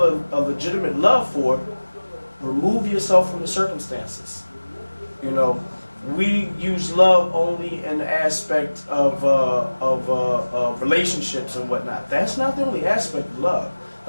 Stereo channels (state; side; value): inverted; both; correlation -1.00